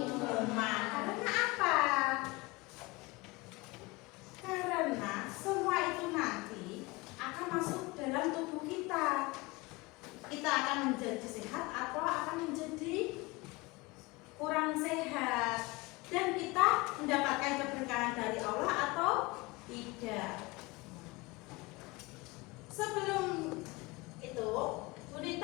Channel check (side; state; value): right; quieter; 23.3 dB